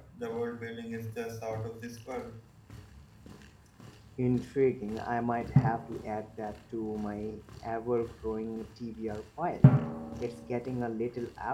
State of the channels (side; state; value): both; identical; correlation 1.00